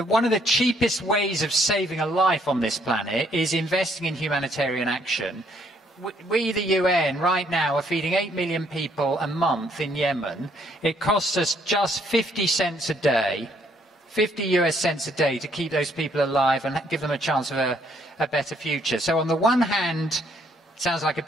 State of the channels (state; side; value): normal; both; correlation 0.68